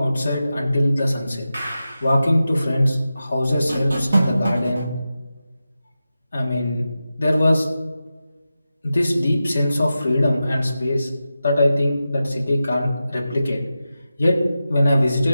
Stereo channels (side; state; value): both; inverted; correlation -0.92